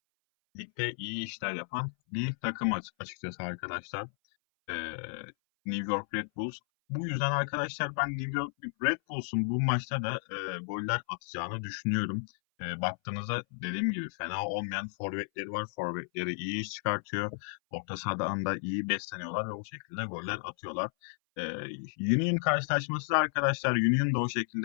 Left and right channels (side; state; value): right; silent; 56 dB below the other